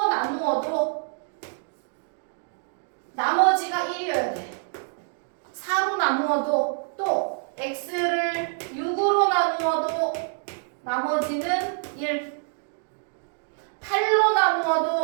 나누어도 나머지가 1이어야 돼. 4로 나누어도 또 x를 6으로 나누어도 나머지는 1. 8로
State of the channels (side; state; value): left; silent; 61 dB below the other